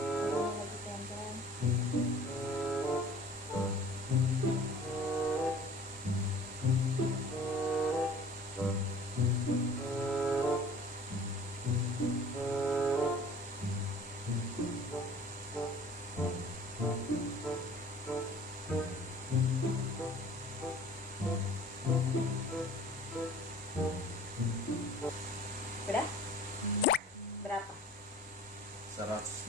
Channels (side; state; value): both; normal; correlation 0.48